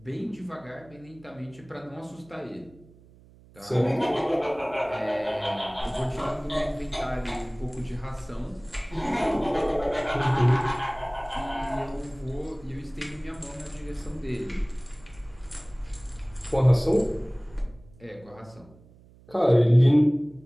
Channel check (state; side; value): noise; right; hum, 25 dB below the sound